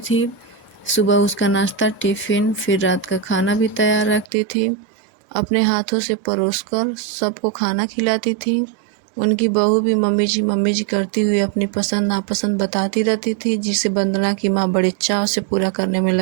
थी। सुबह उसका नाश्ता, टिफिन, फिर रात का खाना भी तैयार रखती थी। अपने हाथों से परोसकर सबको खाना खिलाती थी। उनकी बहू भी मम्मी जी करती हुई अपनी पसंद नापसंद बताती रहती थी, जिसे वंदना की माँ बड़े चाव से पूरा करने में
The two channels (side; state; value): left; drops out; at 4.2 s